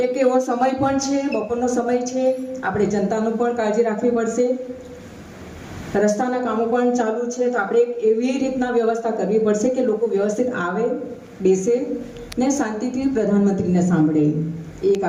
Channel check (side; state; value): both; identical; correlation 1.00